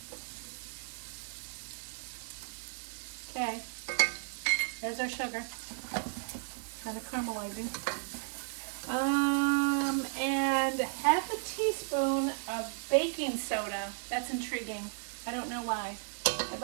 Okay. There's our sugar. Kind of caramelizing. And half a teaspoon of baking soda. That's intriguing. I don't know why. I'd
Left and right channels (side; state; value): left; silent; 55 dB below the other